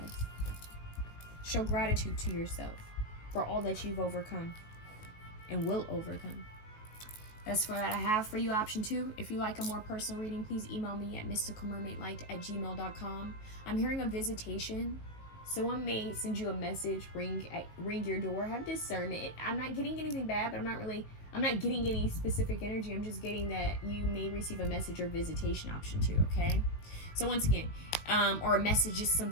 Show gratitude to yourself for all that you've overcome and will overcome. That's what I have for you, option 2. If you like a more personal reading, please email me at mysticalmermaidlight@gmail.com. I'm hearing a visitation. Someone may send you a message, ring your door. Have discernment. I'm not getting anything bad, but I'm not getting any specific energy. I'm just getting that you may receive a message or visitation, option 2, okay? So once again, or a message, just some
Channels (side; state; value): right; late; 19 ms